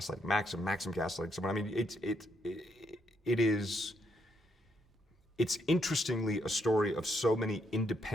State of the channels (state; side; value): normal; both; correlation 0.75